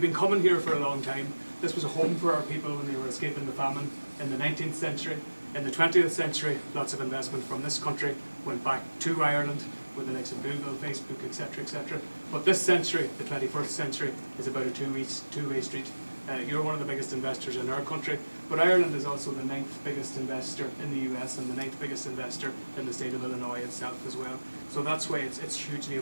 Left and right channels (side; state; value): both; inverted; correlation -1.00